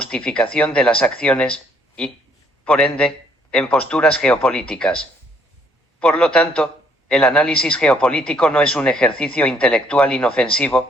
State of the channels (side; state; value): both; normal; correlation 0.66